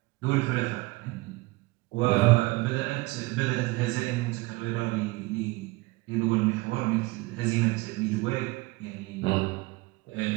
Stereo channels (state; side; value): quieter; left; 22.4 dB